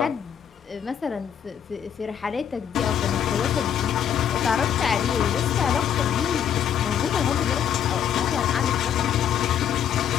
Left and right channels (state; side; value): quieter; right; 8.9 dB